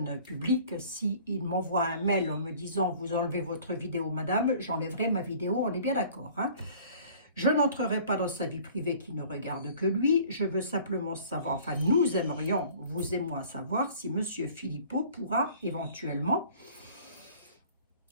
publique, s'il m'envoie un mail en me disant « Vous enlevez votre vidéo, madame », j'enlèverai ma vidéo, on est bien d'accord, hein. Je n'entrerai pas dans sa vie privée qui ne regarde que lui. Je veux simplement savoir, enfin nous aimerions, vous et moi, savoir si Monsieur Philippot pourra éventuellement...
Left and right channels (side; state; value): both; inverted; correlation -0.50